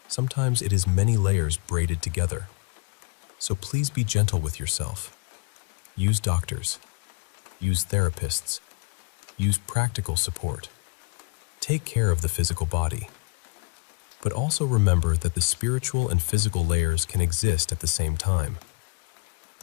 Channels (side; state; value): right; quieter; 32.9 dB